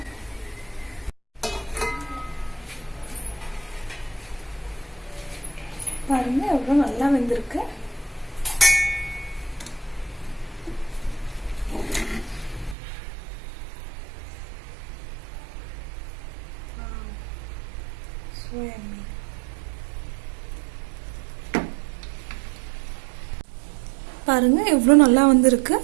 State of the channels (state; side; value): drops out; left; at 12.8 s